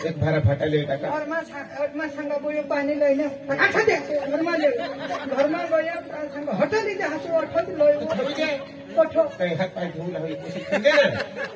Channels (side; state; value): both; identical; correlation 1.00